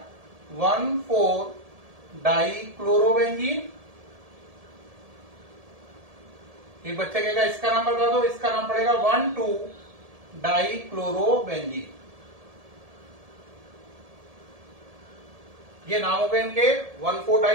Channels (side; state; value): left; late; 1.7 ms